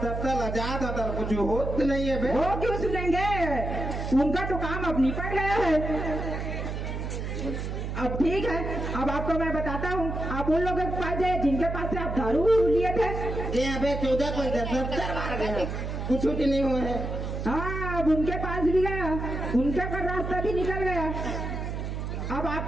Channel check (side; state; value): right; noise; hum, 4 dB below the sound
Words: दफ्तर आजाद होता कुछ होत नहीं है बे। वो क्यों सुनेंगे? उनका तो काम अब निपट गया है। अब ठीक है, अब आपको मैं बताता हूँ। आप उन लोगों के पास जाए जिनके पास से आप दारू लिए थे। यहाँ पे 14 पैसा 70 बार गए, कुछ नहीं हुआ है। हाँ, अब उनके पास भी गया, उनका का रास्ता भी निकल गया। अब